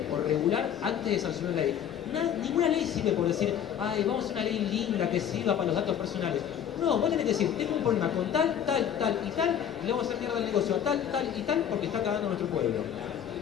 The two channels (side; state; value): right; quieter; 9.2 dB